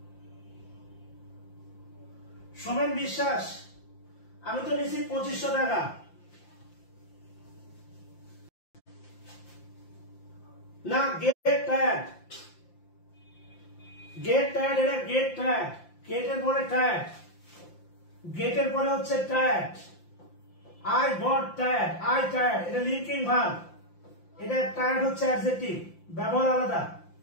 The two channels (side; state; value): right; late; 5.8 ms